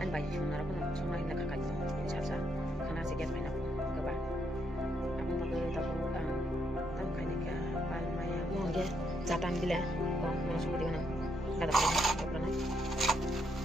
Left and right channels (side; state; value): both; normal; correlation 0.76